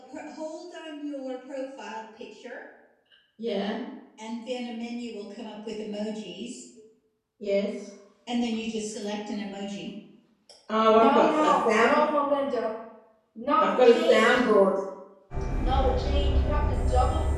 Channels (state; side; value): identical; both; correlation 1.00